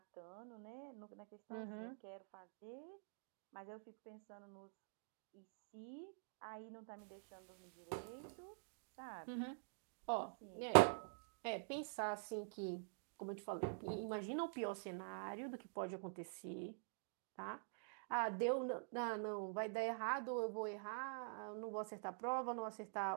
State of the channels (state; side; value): silent; left; digital silence